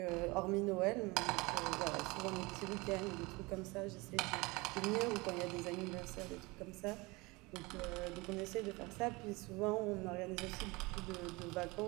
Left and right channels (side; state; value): left; quieter; 24.4 dB